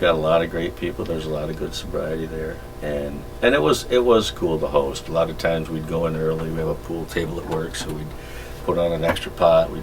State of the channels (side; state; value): both; identical; correlation 1.00